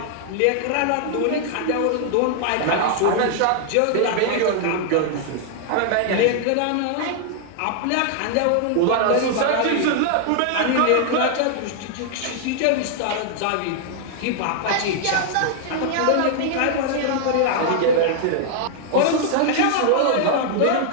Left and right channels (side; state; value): both; different; correlation 0.00